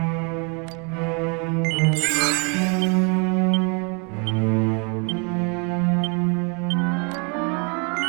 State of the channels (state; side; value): quieter; left; 34.0 dB